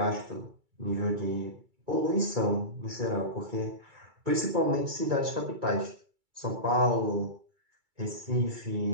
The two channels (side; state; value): left; late; 2.3 ms